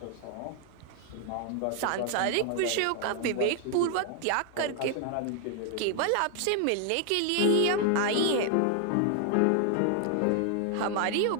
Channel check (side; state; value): both; different; correlation 0.00